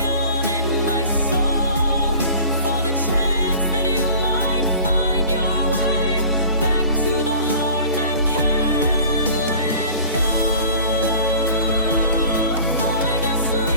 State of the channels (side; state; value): both; inverted; correlation -0.45